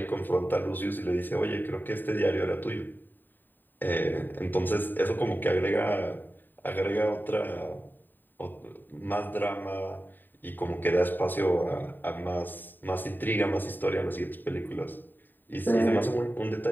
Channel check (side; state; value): right; late; 0.091 ms